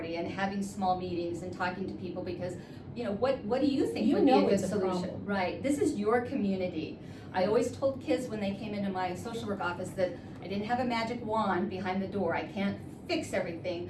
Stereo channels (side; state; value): both; identical; correlation 1.00